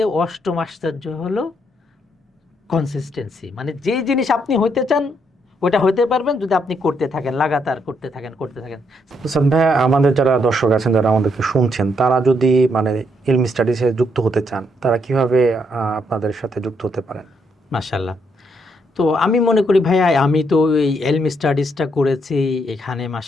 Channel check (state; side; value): normal; both; correlation 0.75